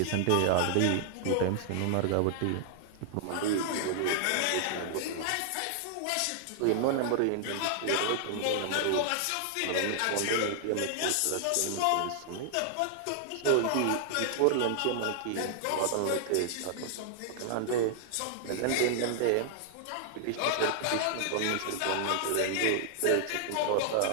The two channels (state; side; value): different; both; correlation -0.01